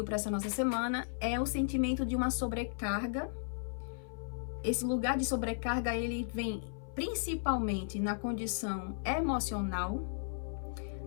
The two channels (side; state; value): right; silent; 54 dB below the other